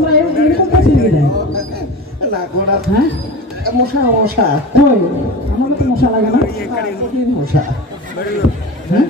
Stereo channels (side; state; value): both; normal; correlation 0.31